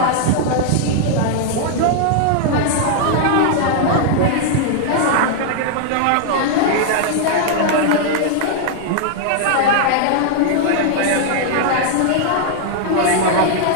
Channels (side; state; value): both; different; correlation -0.01